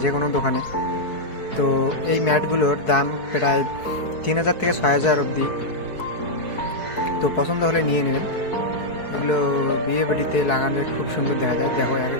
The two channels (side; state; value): right; late; 4.7 ms